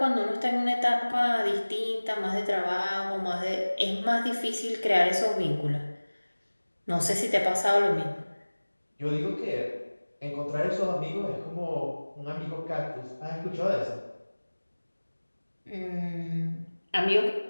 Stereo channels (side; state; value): both; inverted; correlation -1.00